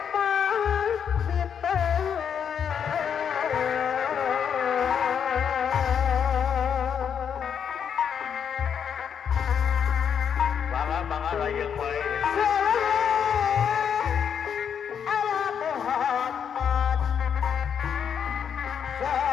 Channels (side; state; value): right; quieter; 7.8 dB